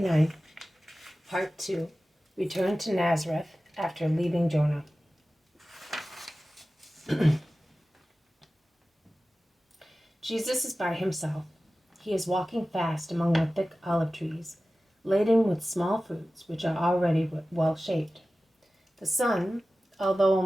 Part 2, Return to Nazareth after leaving Jonah. Jesus is by himself. He is walking fast among the thick olive trees, laden with small fruits which are already well shaped. The sun, although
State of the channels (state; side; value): normal; both; correlation 0.96